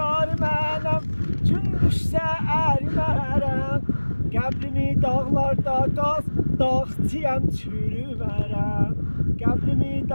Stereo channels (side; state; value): both; inverted; correlation -1.00